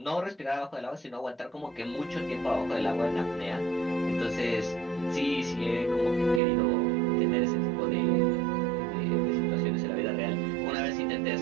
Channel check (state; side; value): drops out; left; at 6.4 s